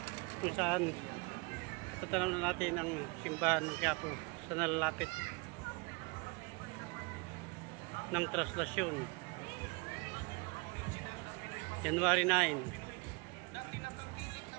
kung saan tatanaw na natin ang simbahan ng Quiapo sa nalalapit ng translasyon. January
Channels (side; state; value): left; quieter; 29.0 dB